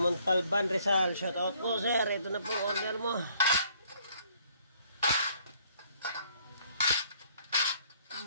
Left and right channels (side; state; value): both; inverted; correlation -0.63